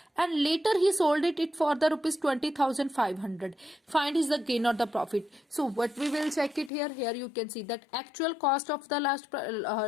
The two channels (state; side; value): drops out; right; at 6.7 s